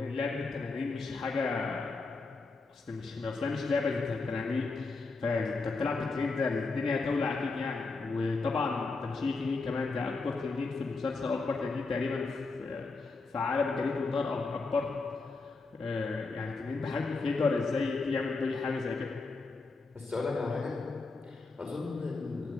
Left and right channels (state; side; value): quieter; right; 3.9 dB